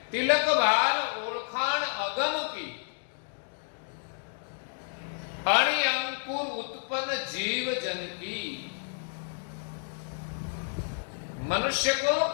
तिलक भाल ओळखाण अगम की अणि अंकुर उत्पन्न जीव जन की। मनुष्य को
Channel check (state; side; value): silent; right; digital silence